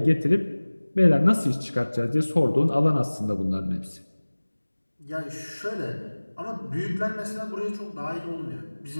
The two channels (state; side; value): inverted; both; correlation -1.00